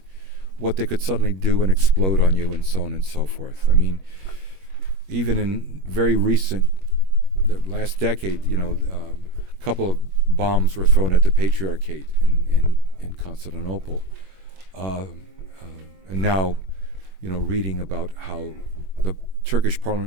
what they could suddenly do and explode on you, and so on and so forth. I mean, even in very recent, the last decade, a couple of bombs were thrown at the Patriarchate in Constantinople. And now, reading about how the Turkish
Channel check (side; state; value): left; late; 21 ms